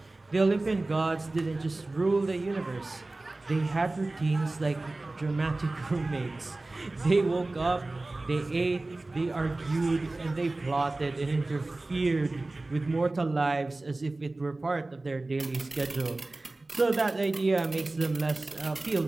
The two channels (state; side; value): quieter; left; 3.0 dB